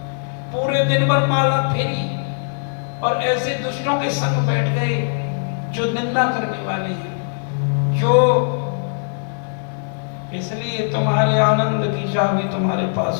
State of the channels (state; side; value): silent; right; digital silence